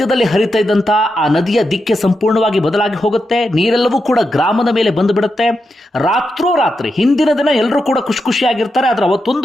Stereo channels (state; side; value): normal; both; correlation 0.86